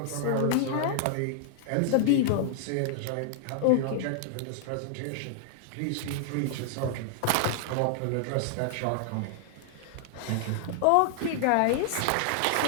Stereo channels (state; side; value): different; both; correlation -0.01